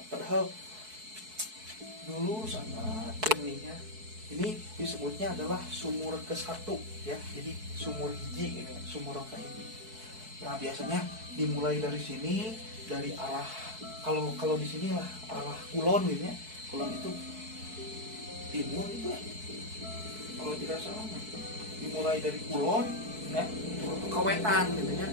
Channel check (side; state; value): left; late; 4.6 ms